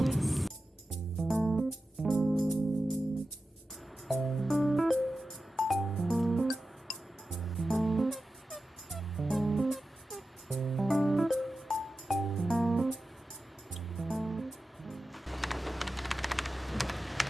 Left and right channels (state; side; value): normal; both; correlation 0.93